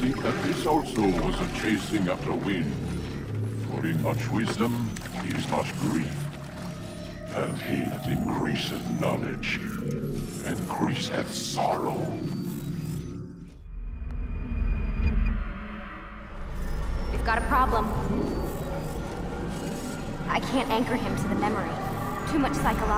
that this also was a chasing after wind. For in much wisdom is much grief. And he that increaseth knowledge, increaseth sorrow. We've got a problem. I can't anchor him to the memory. Too much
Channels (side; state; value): both; identical; correlation 1.00